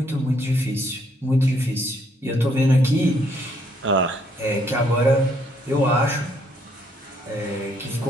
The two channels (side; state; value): both; normal; correlation 0.69